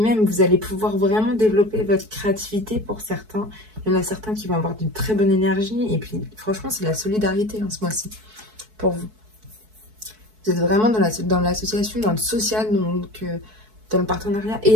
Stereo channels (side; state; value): left; late; 4.6 ms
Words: même, vous allez pouvoir vraiment développer votre créativité pour certains. Il y en a certains qui vont avoir d'une très bonne énergie. Et puis, franchement, c'est la solidarité ce mois-ci pour vous. Vous êtes vraiment dans l'association, dans le social, donc dans le partenariat.